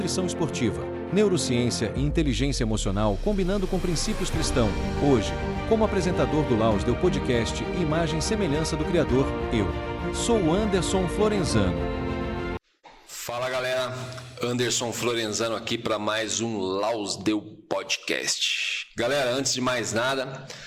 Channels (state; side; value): identical; both; correlation 1.00